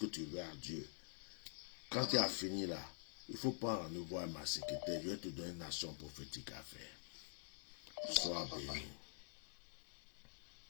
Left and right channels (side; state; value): right; silent; digital silence